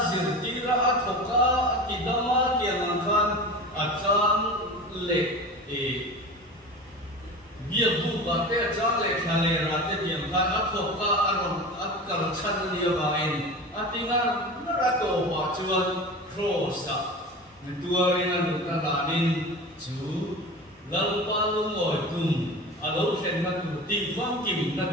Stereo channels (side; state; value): both; normal; correlation 0.33